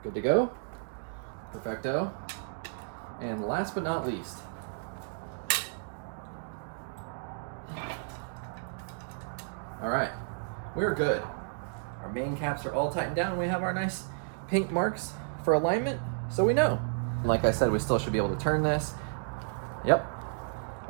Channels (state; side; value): silent; left; digital silence